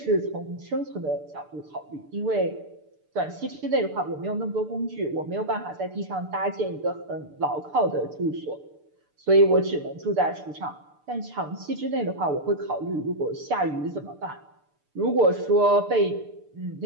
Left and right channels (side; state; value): left; late; 6.8 ms